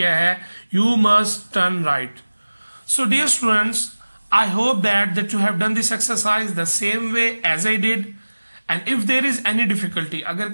है you must turn right. So dear students, I hope that you have done this exercise the same way as I did. And if there is any difficulty, अगर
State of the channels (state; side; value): inverted; both; correlation -1.00